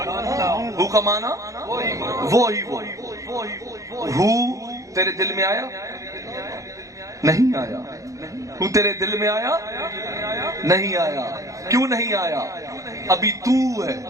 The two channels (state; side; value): late; left; 0.16 ms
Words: ہو کا معنی وہ ہی وہ. ہو تیرے دل میں آیا نہیں آیا؟ ہو تیرے دل میں آیا نہیں آیا؟ کیوں نہیں آیا؟ ابھی تو ہے.